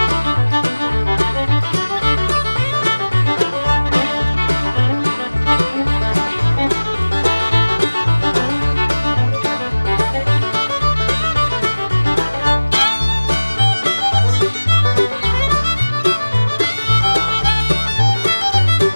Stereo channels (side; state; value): both; inverted; correlation -1.00